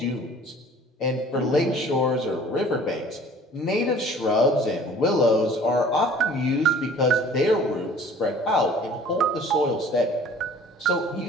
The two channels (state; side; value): normal; both; correlation 0.49